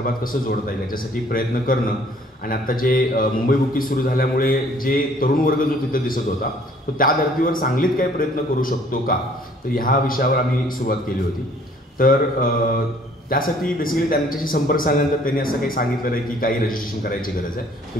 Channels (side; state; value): both; normal; correlation 0.58